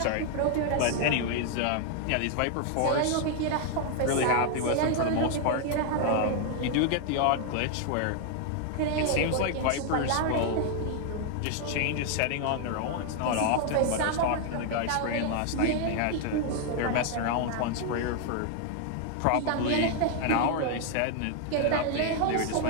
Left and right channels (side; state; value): both; different; correlation 0.00